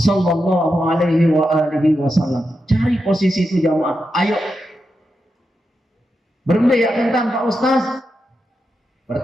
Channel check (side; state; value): both; normal; correlation 0.87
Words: Alaihi Wasallam. Cari posisi itu jamaah. Ayo bermedaya tentang Pak Ustaz.